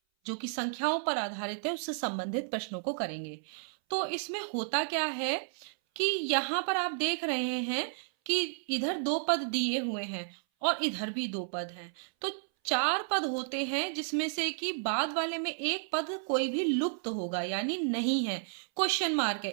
जो कि संख्याओं पर आधारित है उससे संबंधित प्रश्नों को करेंगे। तो इसमें होता क्या है कि यहाँ पर आप देख रहे हैं कि इधर दो पद दिए हुए हैं और इधर भी दो पद हैं। तो चार पद होते हैं जिसमें से कि बाद वाले में एक पद कोई भी लुप्त होगा यानी नहीं है, क्वेश्चन मार्क है।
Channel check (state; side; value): silent; left; 56 dB below the other